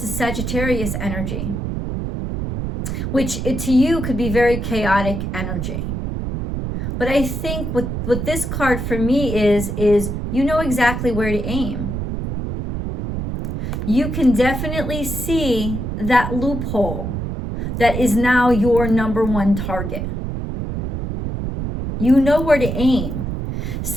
is Sagittarius energy, which to you could be very chaotic energy. But I think what this card for me is you know exactly where to aim. You can definitely see that loophole that is now your number one target. You know where to aim.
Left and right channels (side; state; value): right; noise; rumble, 4 dB below the sound